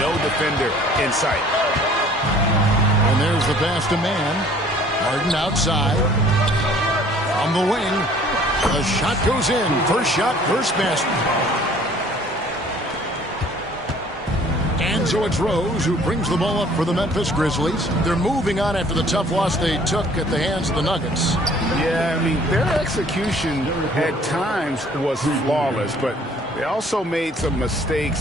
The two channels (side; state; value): both; normal; correlation 0.55